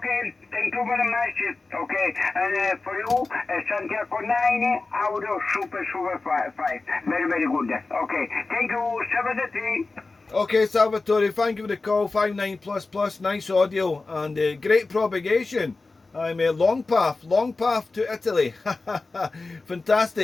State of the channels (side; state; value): right; quieter; 3.6 dB